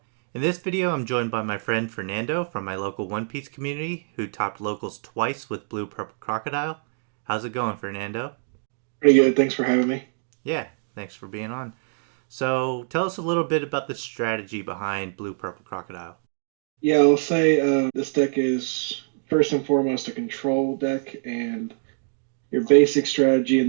In this video I'm joined by my friend Fernando from my local One Piece community who topped locals twice with Blue Purple Crocodile. How's it going, Fernando? Pretty good. Thanks for having me. Yeah, thanks for being on. So tell us a little bit about the strategy behind Blue Purple Crocodile. Yeah, I'll say this deck is first and foremost a control deck, and your basic strategy in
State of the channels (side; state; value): left; silent; 62 dB below the other